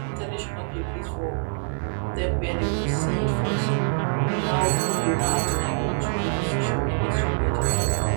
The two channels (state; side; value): silent; left; 61 dB below the other